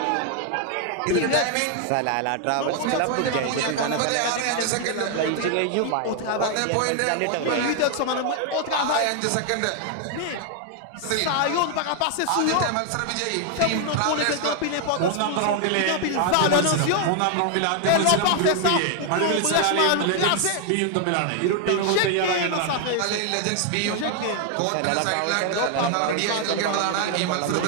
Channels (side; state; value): both; different; correlation 0.00